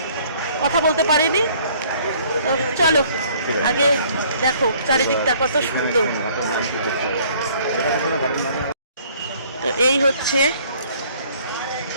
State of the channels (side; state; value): both; inverted; correlation -0.58